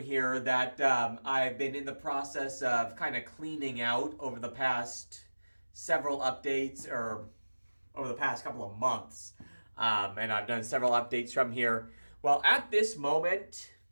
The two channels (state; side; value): inverted; both; correlation -1.00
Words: here that I've been in the process of kind of cleaning out over the past several updates, or over the past couple of months. And I've done several updates from here. Well, at this moment,